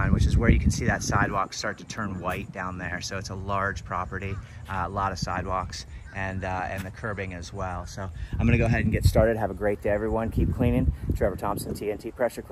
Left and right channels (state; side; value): identical; both; correlation 1.00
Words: which is where you can see that sidewalk start to turn white down there. So it's a large property, a lot of sidewalks, and the curbing as well. So I'm going to go ahead and get started. Have a great day, everyone. Keep cleaning. Trevor Thompson, TNT Pressure